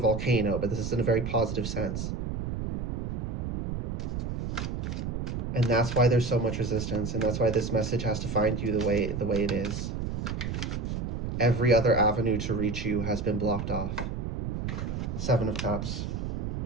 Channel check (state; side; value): noise; right; rumble, 3 dB below the sound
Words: but this is in a very positive sense. And that's why there's so much resistance, and that's why this message has to find you the way it is. Every other avenue to reach you has been blocked off. 7 of Cups.